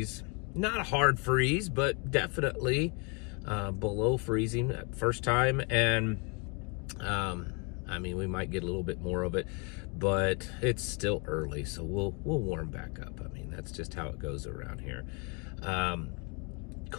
Not a hard freeze, but definitely below freezing first time. And I mean, we might get a little bit more of it, but it's still early, so we'll warm back up. I mean, that's just how it goes around here.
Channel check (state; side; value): quieter; right; 33.4 dB